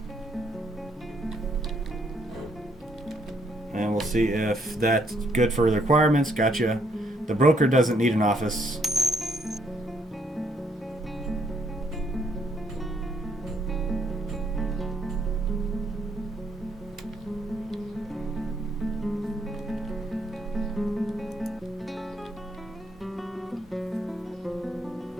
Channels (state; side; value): normal; both; correlation 0.71